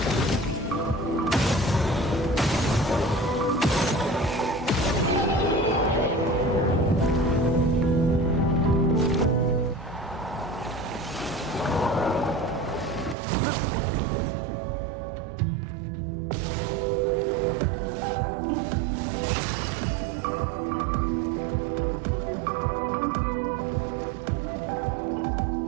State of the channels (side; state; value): left; drops out; at 13.2 s